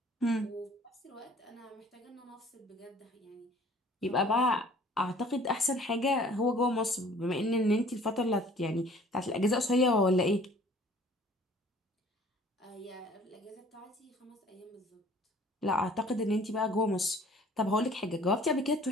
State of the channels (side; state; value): both; normal; correlation 0.52